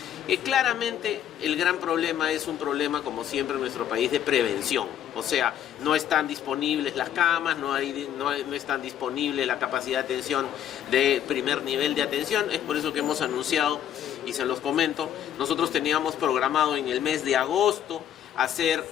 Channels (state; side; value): quieter; right; 10.2 dB